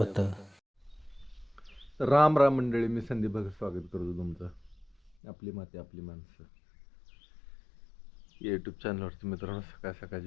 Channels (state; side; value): drops out; right; at 5.2 s